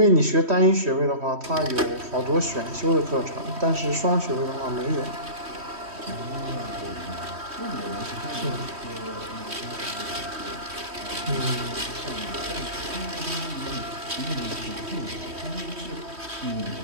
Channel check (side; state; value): left; late; 3.1 ms